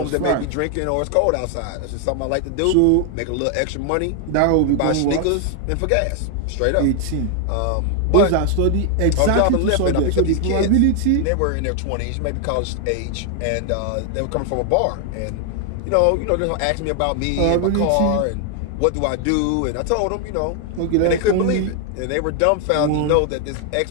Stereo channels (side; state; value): both; different; correlation 0.00